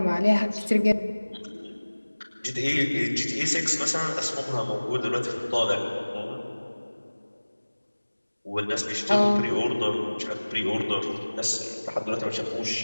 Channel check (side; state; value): both; inverted; correlation -1.00